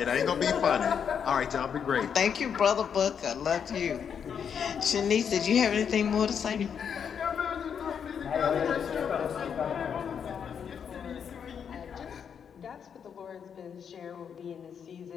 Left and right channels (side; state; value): right; quieter; 7.5 dB